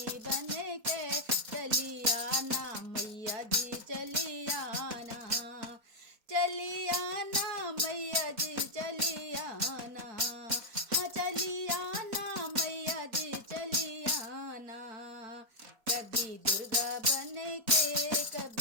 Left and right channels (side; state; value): left; late; 4.5 ms